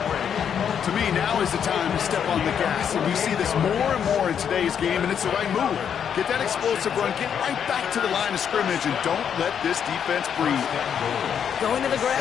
me, now is the time to step on the gas. And we see this more and more in today's game, and it's the right move. Get that explosive run, get right back to the line of scrimmage, and don't let this defense breathe. Going to the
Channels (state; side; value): quieter; right; 8.1 dB